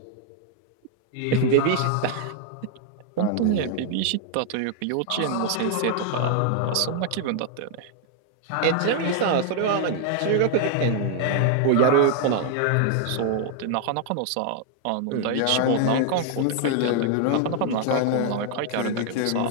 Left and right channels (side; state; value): both; different; correlation 0.00